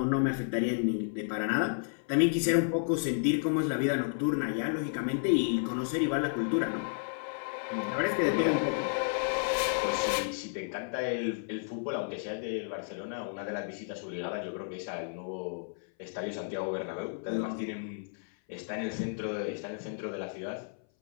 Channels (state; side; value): silent; right; 56 dB below the other